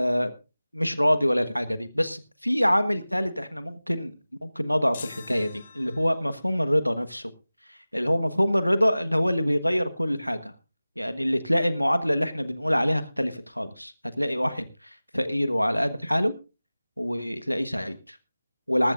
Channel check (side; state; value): both; inverted; correlation -0.98